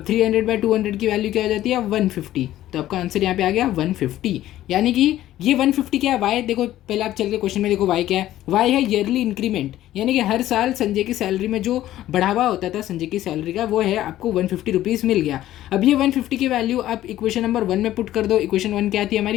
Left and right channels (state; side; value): quieter; right; 13.8 dB